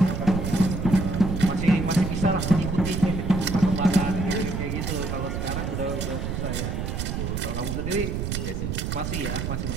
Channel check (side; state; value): right; noise; rumble, 3 dB below the sound